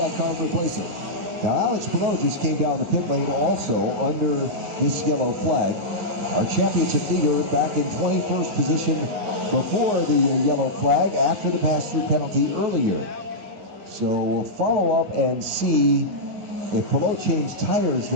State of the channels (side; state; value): left; late; 9.8 ms